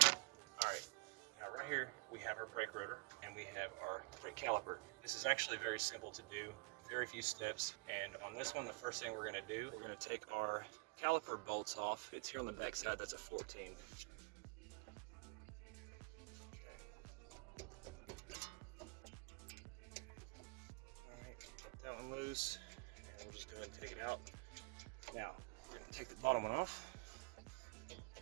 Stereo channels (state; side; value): quieter; left; 33.2 dB